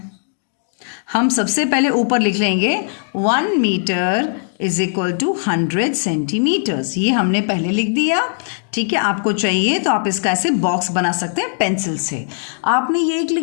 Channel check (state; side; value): silent; right; digital silence